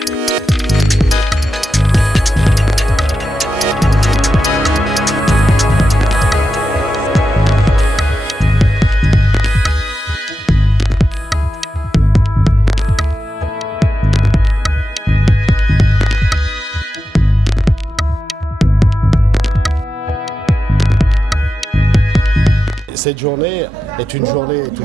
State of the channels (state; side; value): normal; both; correlation 0.90